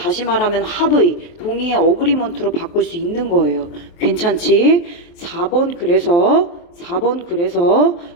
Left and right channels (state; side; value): late; right; 23 ms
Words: 말하면 합의, 동의의 agreement로 바꿀 수 있는 거예요. 괜찮지? 4번 그래서